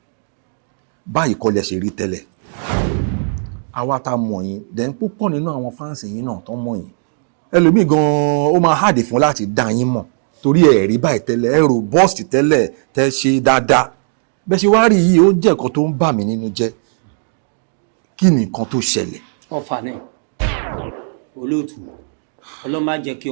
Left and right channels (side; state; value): left; silent; digital silence